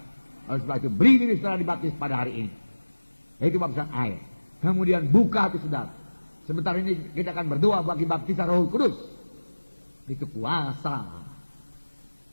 Oleh sebab itu, beri diri saudara dibaptis pada hari ini. Itu baptisan air. Kemudian buka hati saudara. Sebentar ini kita akan berdoa bagi baptisan Roh Kudus. Itu kuasa.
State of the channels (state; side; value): inverted; both; correlation -1.00